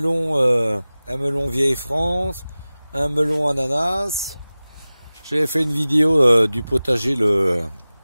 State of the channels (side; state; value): both; inverted; correlation -0.97